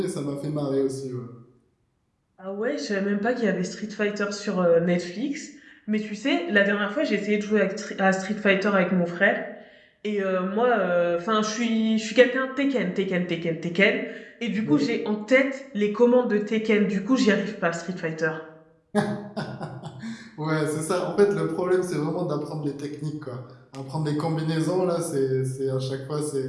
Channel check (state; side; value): identical; both; correlation 1.00